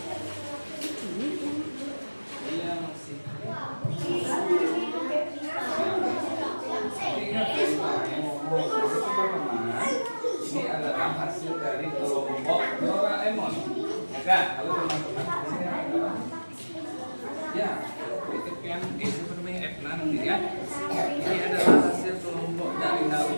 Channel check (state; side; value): inverted; both; correlation -1.00